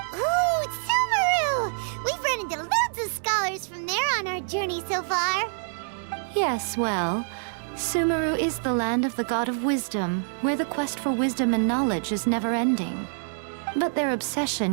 Ooh, Sumeru! We've run into loads of scholars from there on our journey so far. Yes, well, Sumeru is the land of the god of wisdom, where the quest for wisdom and knowledge is never-ending. But their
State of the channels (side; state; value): left; silent; digital silence